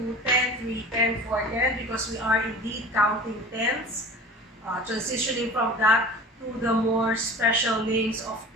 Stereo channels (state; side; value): normal; both; correlation 0.39